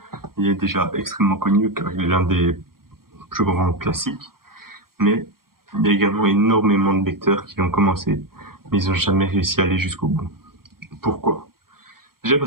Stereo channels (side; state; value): left; late; 0.93 ms